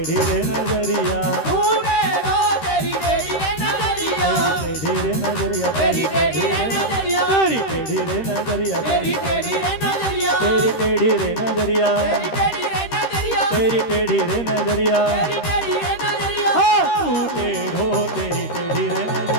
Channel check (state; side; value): late; right; 13 ms